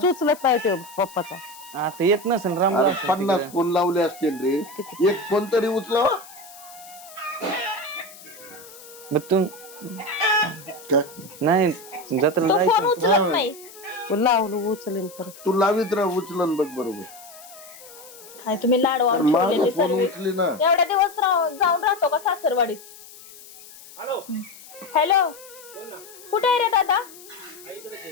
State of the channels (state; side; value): noise; left; hiss, 19 dB below the sound